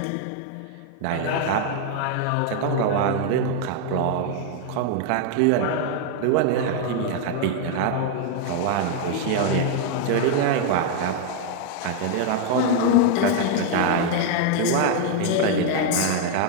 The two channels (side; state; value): both; different; correlation 0.00